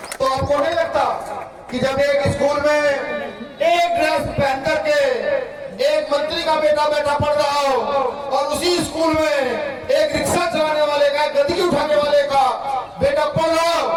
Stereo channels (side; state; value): both; identical; correlation 1.00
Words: तो आपको नहीं लगता कि जब एक स्कूल में एक ड्रेस पहन करके एक मंत्री का बेटा पढ़ रहा हो और उसी स्कूल में एक रिक्शा चलाने वाले का, गंदगी उठाने वाले का बेटा पढ़ रहा हो,